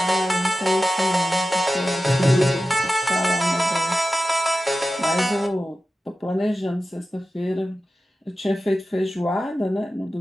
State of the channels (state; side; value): normal; both; correlation 0.94